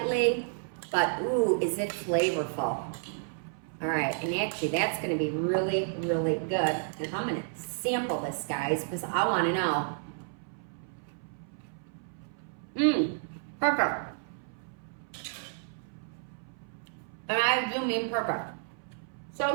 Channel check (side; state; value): left; silent; 57 dB below the other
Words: but ooh, is it flavorful. All right, and actually that's gonna be really, really good. And I'm gonna sample this, guys, because I wanna know. Perfect. And I do mean perfect. So,